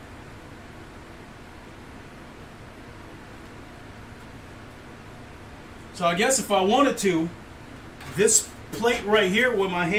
So I guess if I wanted to, this plate right here where my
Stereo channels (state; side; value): identical; both; correlation 1.00